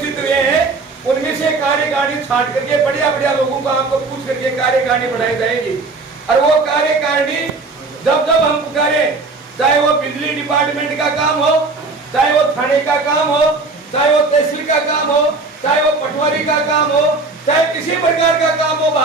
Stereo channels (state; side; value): quieter; left; 3.7 dB